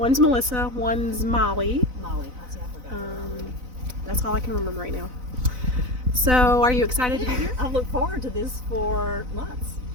Melissa, one's Molly. Molly, I forgot. That's all I can remember right now. So, are you excited to be here? I've looked forward to this for months.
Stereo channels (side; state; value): left; late; 4.0 ms